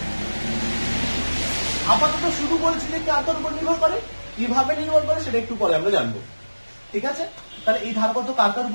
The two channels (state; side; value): inverted; both; correlation -1.00